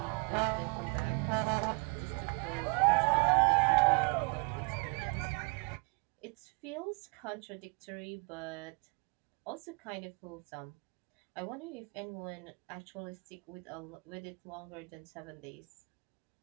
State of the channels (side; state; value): left; quieter; 34.1 dB